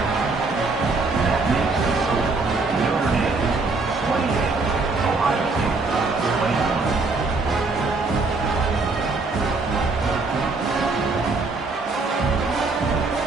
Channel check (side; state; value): left; quieter; 3.8 dB